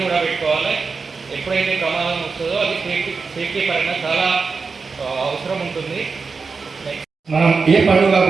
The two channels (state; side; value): quieter; left; 4.7 dB